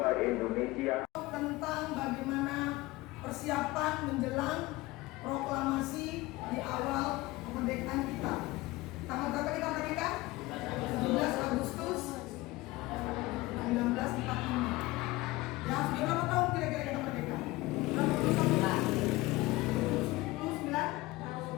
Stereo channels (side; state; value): right; quieter; 20.0 dB